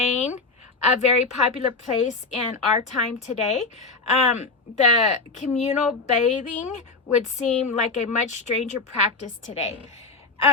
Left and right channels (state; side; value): quieter; right; 3.9 dB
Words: a very popular place in our time today, the communal bathing would seem like a much stranger practice today.